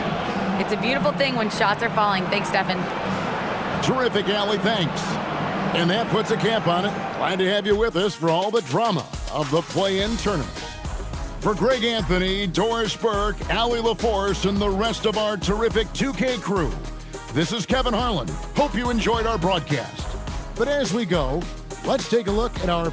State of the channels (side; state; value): both; identical; correlation 1.00